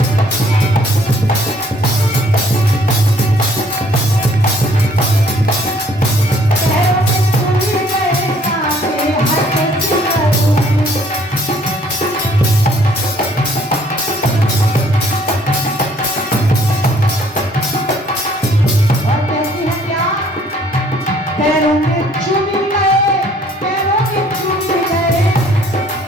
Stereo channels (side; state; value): both; normal; correlation 0.61